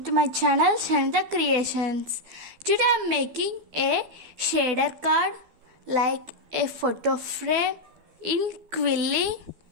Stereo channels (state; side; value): late; left; 12 ms